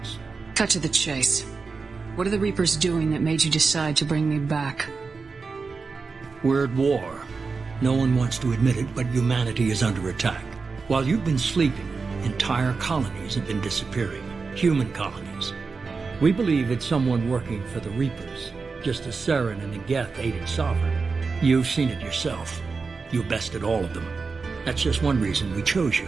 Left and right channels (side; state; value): left; quieter; 4.6 dB